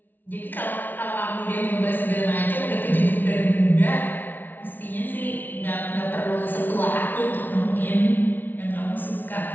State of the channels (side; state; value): right; late; 0.087 ms